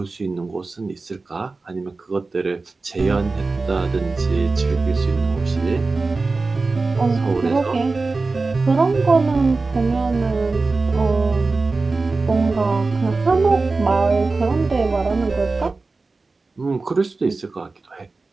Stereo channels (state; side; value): quieter; left; 3.8 dB